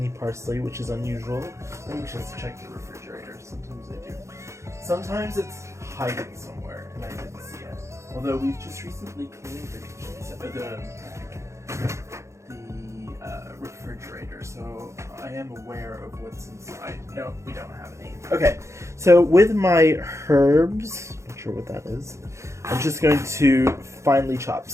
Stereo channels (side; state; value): left; late; 0.14 ms